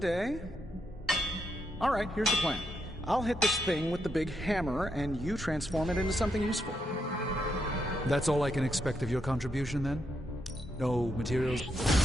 All right, here's the plan. I'll hit this thing with the big hammer, and you transform it into something useful. That's all I can expect of your contribution, then? No materials?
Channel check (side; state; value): both; normal; correlation 0.81